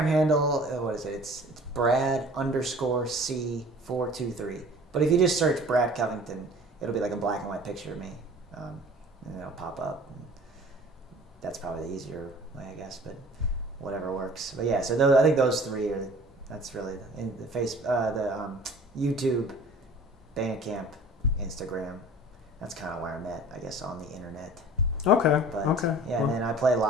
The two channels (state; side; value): normal; both; correlation 0.46